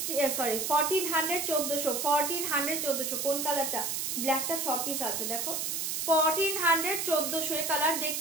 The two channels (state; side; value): noise; right; hiss, 1 dB below the sound